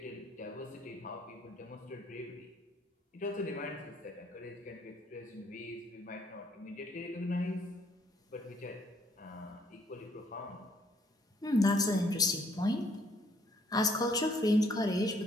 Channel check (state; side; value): normal; both; correlation 0.66